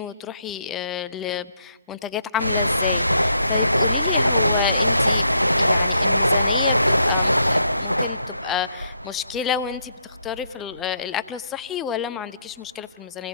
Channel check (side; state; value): both; inverted; correlation -0.73